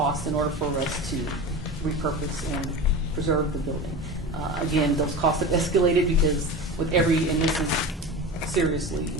in order for us to repurpose and preserve the building. Again, those costs have escalated because with every, and this is seriously,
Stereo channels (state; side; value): normal; both; correlation 0.30